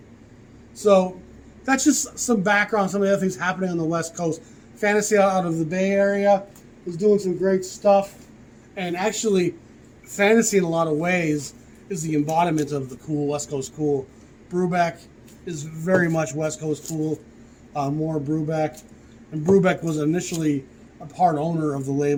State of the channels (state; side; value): identical; both; correlation 1.00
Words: So that's just some background, some of the other things happening on the West Coast. Fantasy out of the Bay Area is doing some great stuff. And actually, Fantasy in a lot of ways is the embodiment of the cool, West Coast cool. Brubeck is very much West Coast cool. More Brubeck. And Brubeck was initially a part owner of the